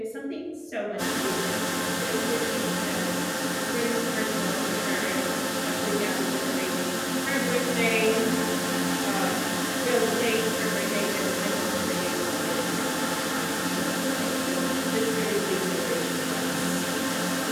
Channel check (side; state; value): both; identical; correlation 1.00